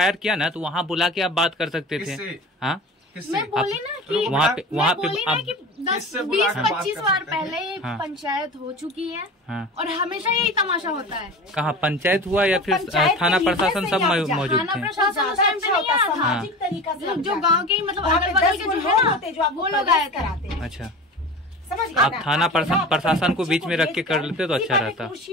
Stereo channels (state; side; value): normal; both; correlation 0.34